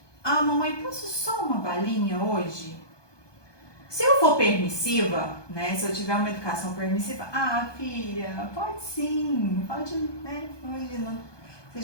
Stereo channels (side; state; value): right; late; 1.2 ms